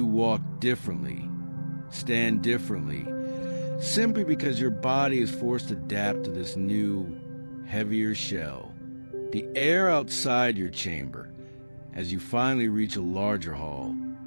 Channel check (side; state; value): both; inverted; correlation -1.00